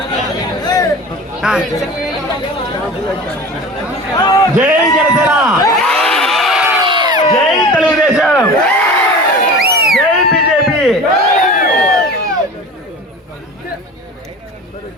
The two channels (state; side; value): normal; both; correlation 0.36